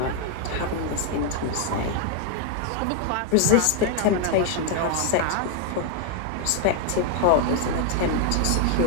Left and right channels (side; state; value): both; different; correlation 0.00